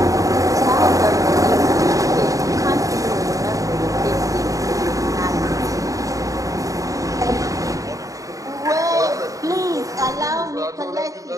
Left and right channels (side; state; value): left; late; 0.16 ms